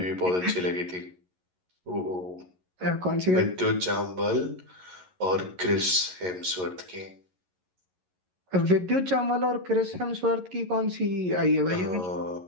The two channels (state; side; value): late; left; 11 ms